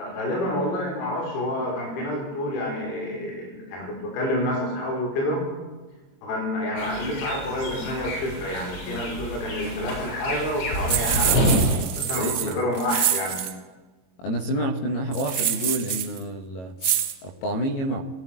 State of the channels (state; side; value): late; right; 22 ms